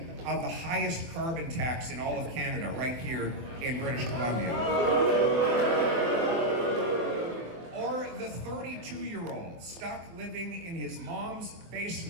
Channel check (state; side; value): late; left; 24 ms